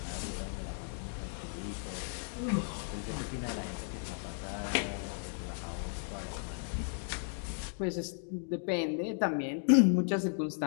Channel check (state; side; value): silent; right; 54 dB below the other